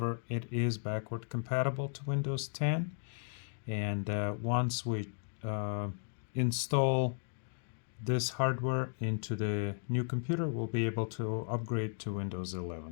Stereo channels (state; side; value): silent; right; 54 dB below the other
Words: it is backward compatible to Windows 10, and once we install this hardware into the new computer, we'll be able to upgrade to Windows